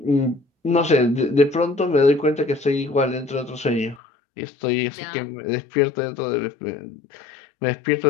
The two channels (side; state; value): right; drops out; at 4.0 s